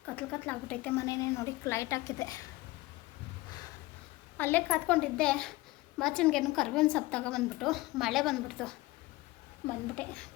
ಕತ್ಲಾಗ್ಬಿಟ್ಟೈತೆ. ಮನೆಯೇ ನೋಡಿ ಲೈಟ್ ಹಾಕಿದೆ. ಅಲ್ಲೇ ಕಾತ್ಕೊಂಡಿದ್ದೆ. ಬಾಚಣಿಗೆನು ಕರ್ಬೇವಿನ ಸೊಪ್ಪು ತಗೊಬಂದ್ಬಿಟ್ಟು ಮಳೆ ಬಂದ್ಬಿಡ್ತು. ಬಂದ್ಬಿಟ್ಟೆ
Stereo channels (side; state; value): right; quieter; 19.8 dB